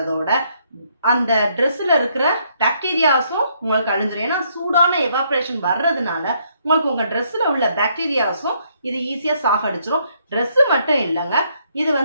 அந்த ட்ரெஸ்ஸில் இருக்கிற பாக்டீரியாஸும் உங்களுக்கு அழிஞ்சிடும். ஏன்னா சூடான எவாப்ரேஷன் வர்றதுனால உங்களுக்கு உங்கள் ட்ரெஸ்ஸில் உள்ள பாக்டீரியாஸும் இது ஈஸியாக சாகடிச்சிடும். ட்ரெஸ்ஸு மட்டும் இல்லைங்க, இது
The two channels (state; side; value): inverted; both; correlation -0.71